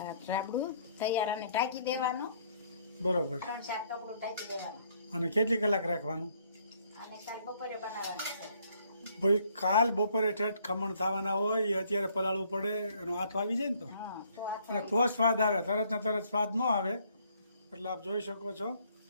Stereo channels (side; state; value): both; inverted; correlation -0.65